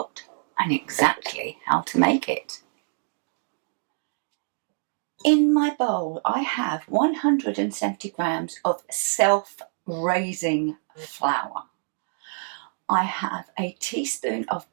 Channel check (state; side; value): silent; left; digital silence